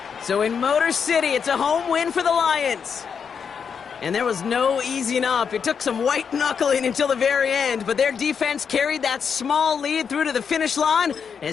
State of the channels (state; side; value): quieter; right; 6.6 dB